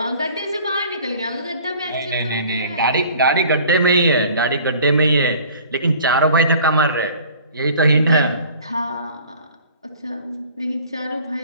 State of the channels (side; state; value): both; inverted; correlation -0.49